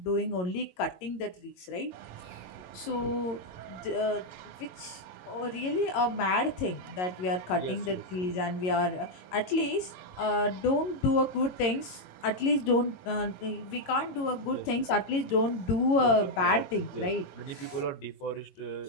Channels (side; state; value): right; late; 22 ms